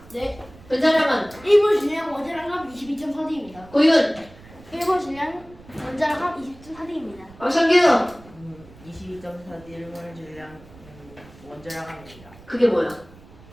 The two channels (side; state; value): right; noise; rumble, 22 dB below the sound